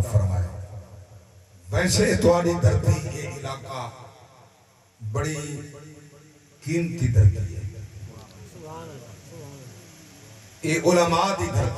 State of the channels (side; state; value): both; identical; correlation 1.00